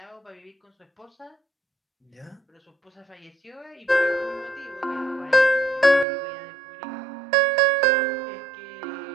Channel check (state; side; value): drops out; left; at 6.1 s